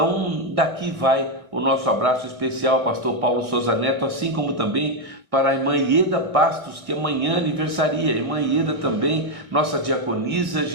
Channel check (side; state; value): left; late; 1.6 ms